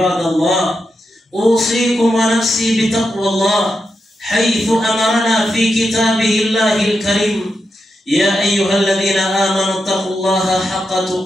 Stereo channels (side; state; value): both; normal; correlation 0.86